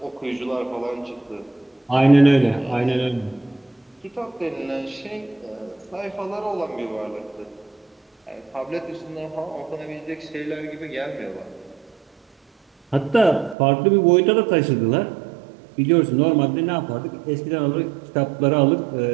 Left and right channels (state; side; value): drops out; left; at 13.6 s